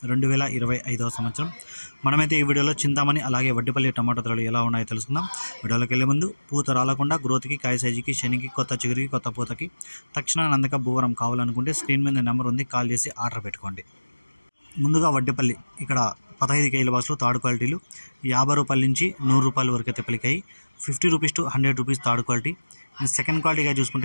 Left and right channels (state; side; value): inverted; both; correlation -1.00